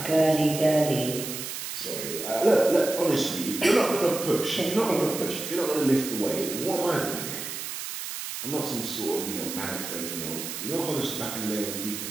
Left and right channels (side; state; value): right; noise; hiss, 7 dB below the sound